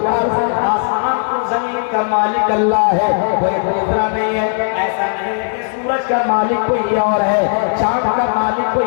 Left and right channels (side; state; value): right; silent; digital silence